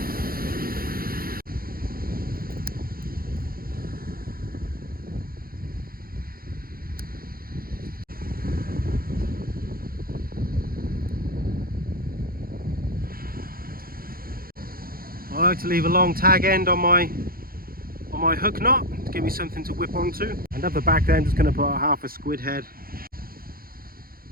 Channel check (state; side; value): late; left; 0.43 ms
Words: I like to leave a long tag end on my hook knot to give me something to whip onto. And up the back there I'm just going to put a half a squid head.